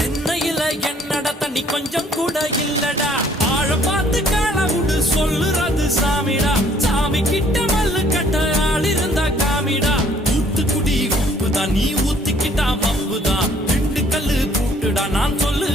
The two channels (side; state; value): both; normal; correlation 0.60